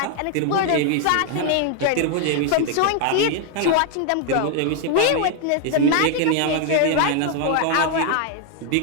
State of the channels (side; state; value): both; different; correlation 0.00